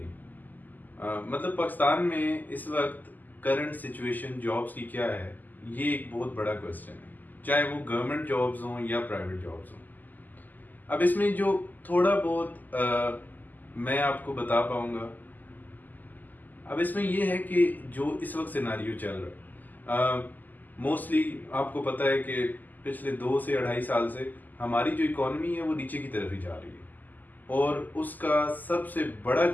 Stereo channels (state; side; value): late; right; 0.084 ms